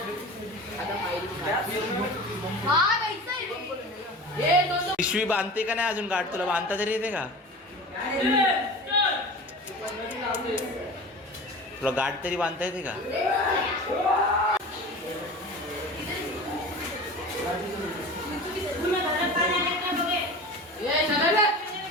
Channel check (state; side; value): normal; both; correlation 0.35